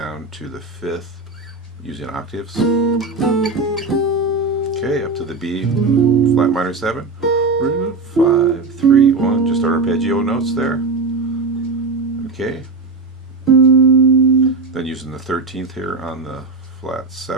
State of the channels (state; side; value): quieter; left; 3.8 dB